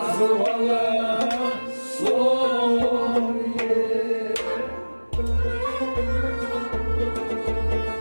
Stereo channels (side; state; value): both; inverted; correlation -1.00